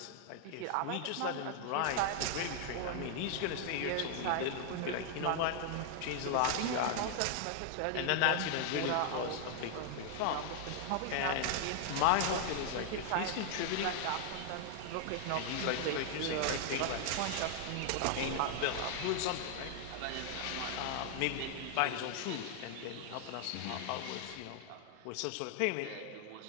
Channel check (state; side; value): different; both; correlation 0.00